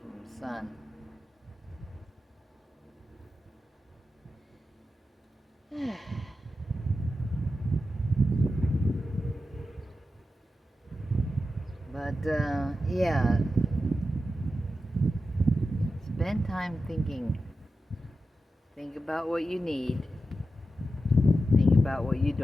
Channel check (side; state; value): both; normal; correlation 0.90